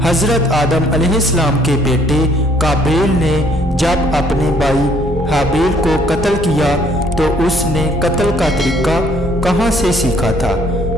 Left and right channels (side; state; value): both; normal; correlation 0.63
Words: حضرت آدم علیہ السلام کے بیٹے قابیل نے جب اپنے بھائی حابیل کو قتل کیا تو اس نے قتل کا طریقہ کہاں سے سیکھا تھا